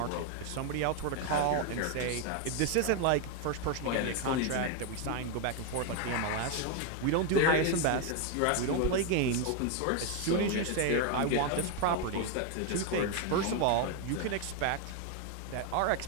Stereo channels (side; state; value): both; different; correlation 0.01